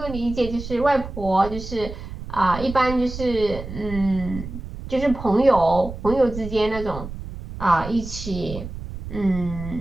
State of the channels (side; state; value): right; noise; rumble, 10 dB below the sound